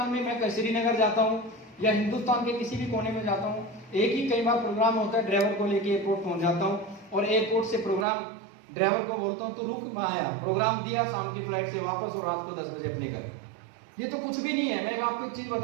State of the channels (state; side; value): drops out; left; at 8.1 s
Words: में मैं श्रीनगर जाता हूँ या हिंदुस्तान के किसी भी कोने में जाता हूँ, एक ही कई बार प्रोग्राम होता है, ड्राइवर को लेके एयरपोर्ट पहुंच जाता हूँ और एयरपोर्ट से प्रोग्राम ड्राइवर को बोलता हूँ तो रुक, मैं आया, प्रोग्राम दिया, शाम की फ्लाइट से वापस और रात को 10 बजे अपने घर। ये तो कुछ भी नहीं है। मैं आपको एक चीज